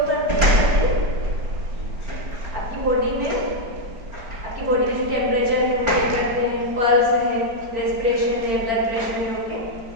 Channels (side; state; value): left; late; 4.5 ms